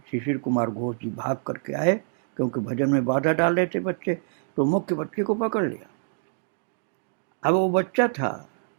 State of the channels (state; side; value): silent; left; digital silence